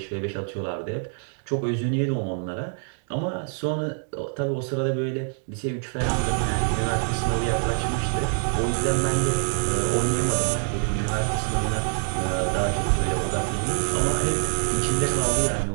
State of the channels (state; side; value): silent; left; 55 dB below the other